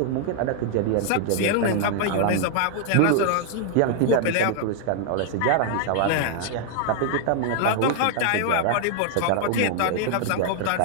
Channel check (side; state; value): both; different; correlation 0.00